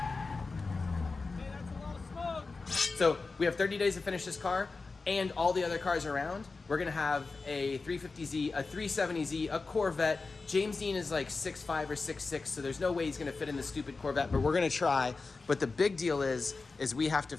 So we have 30 days to finish this car and all the other cars around. We're gonna have a 350Z, a 370Z, a Corvette. James Deane is like 6'5" or 6'6", so there's no way he's gonna fit in the stupid Corvette, but we're gonna try. But the big deal is we have to,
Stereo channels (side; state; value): right; quieter; 4.0 dB